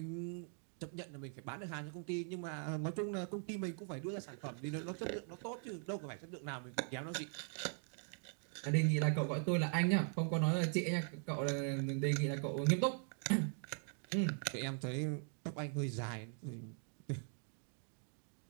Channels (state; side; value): silent; left; 50 dB below the other